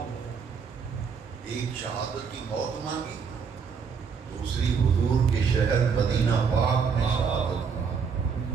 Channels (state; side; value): quieter; left; 6.1 dB